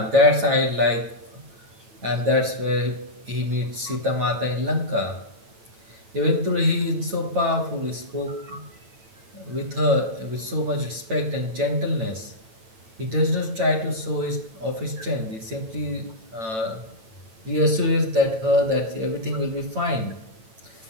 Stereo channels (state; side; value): late; left; 8.9 ms